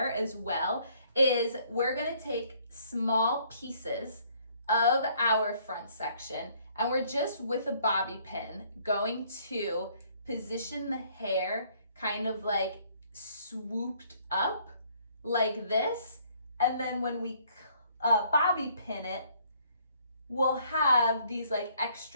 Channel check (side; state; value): both; inverted; correlation -0.63